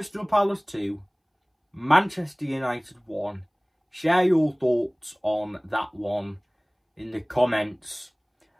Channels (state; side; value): identical; both; correlation 1.00